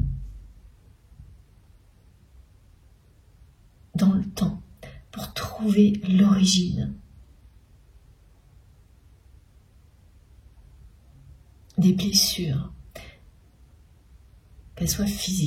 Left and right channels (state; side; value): identical; both; correlation 1.00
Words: dans le temps pour trouver l'origine des blessures, qu'elles soient